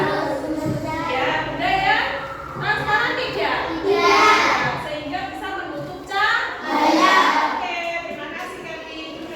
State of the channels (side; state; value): both; identical; correlation 1.00